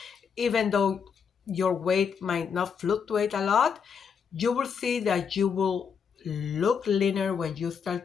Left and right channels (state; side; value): quieter; right; 6.6 dB